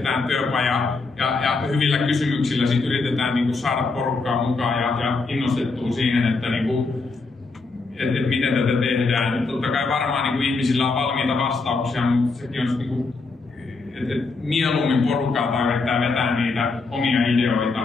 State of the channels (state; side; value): quieter; right; 3.9 dB